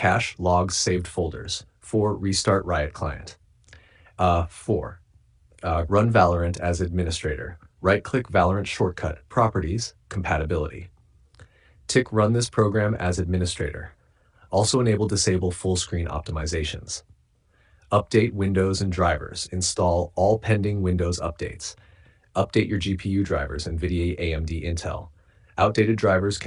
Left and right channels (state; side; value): identical; both; correlation 1.00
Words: logs, saved folders. 4. Restart Riot client. 4. Run Valorant as administrator. Right-click Valorant shortcut, Properties, Compatibility. Tick Run this program as administrator. Also enable disable full screen optimizations. Update Windows and drivers. Install all pending Windows updates. Update your GPU drivers, NVIDIA, AMD, Intel. Outdated drivers